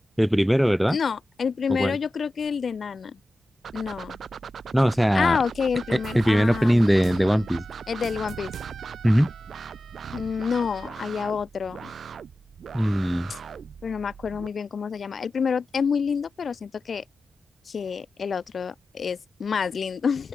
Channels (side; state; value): both; normal; correlation 0.94